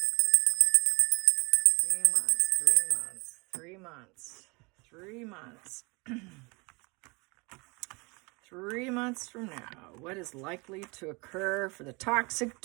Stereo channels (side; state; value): left; quieter; 27.9 dB